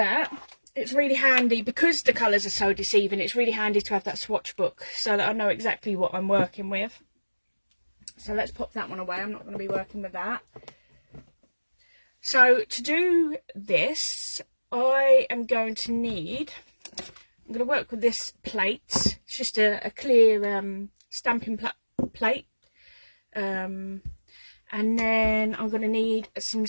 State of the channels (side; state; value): both; inverted; correlation -1.00